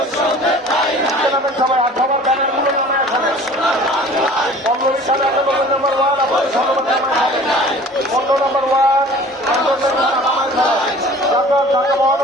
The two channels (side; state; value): both; normal; correlation 0.46